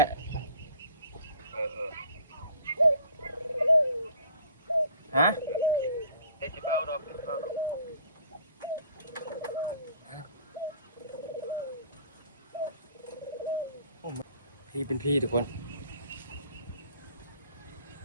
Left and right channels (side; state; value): both; inverted; correlation -0.51